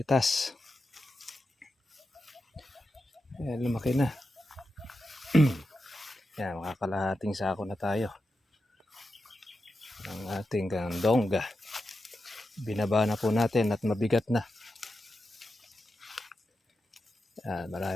Ayan, lumaki na. Yan, makakalahating sako na tayo ng ating gandongga. Binaba na po natin at mabigat na. Yan,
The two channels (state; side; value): normal; both; correlation 0.89